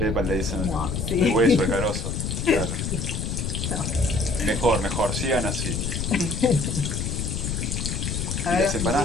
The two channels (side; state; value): left; noise; rumble, 2 dB below the sound